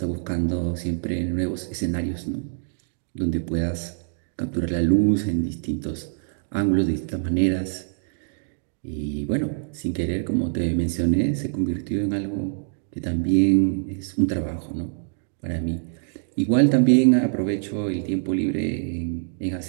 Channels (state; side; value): silent; left; digital silence